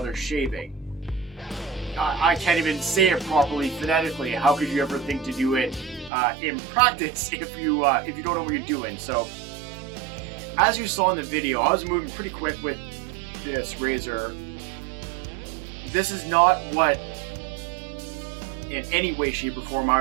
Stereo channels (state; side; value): drops out; left; at 6.1 s